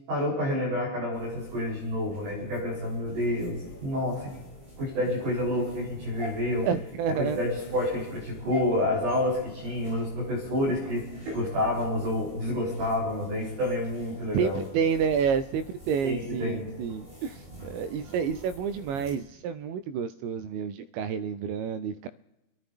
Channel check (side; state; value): left; late; 22 ms